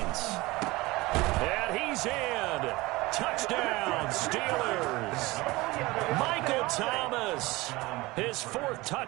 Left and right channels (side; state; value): left; quieter; 21.2 dB